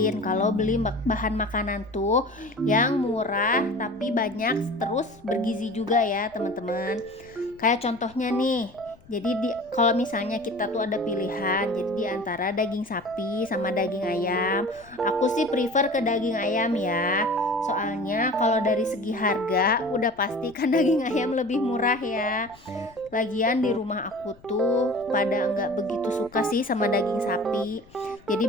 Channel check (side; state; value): left; noise; rumble, 25 dB below the sound